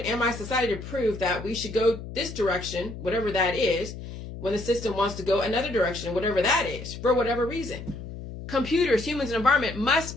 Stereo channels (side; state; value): left; noise; hum, 10 dB below the sound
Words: and my society to prove that we should go this direction, whatever that is, when the system wants to go another direction, whatever that is, for whatever reason. Computers, humans, and environment must